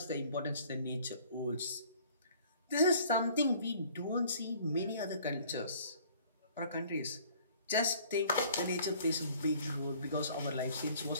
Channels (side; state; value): both; inverted; correlation -0.55